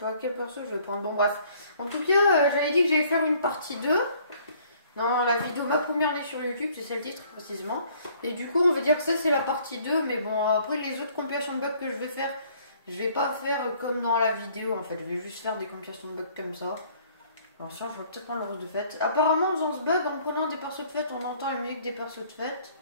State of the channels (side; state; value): both; inverted; correlation -0.59